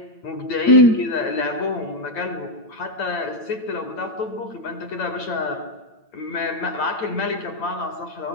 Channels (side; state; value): right; late; 8.9 ms